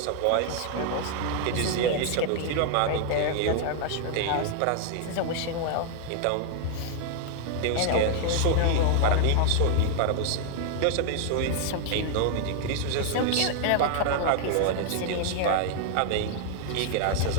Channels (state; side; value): different; both; correlation 0.00